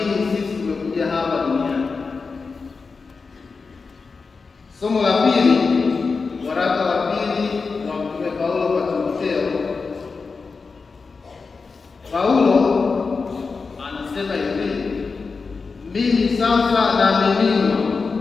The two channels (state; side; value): quieter; right; 4.6 dB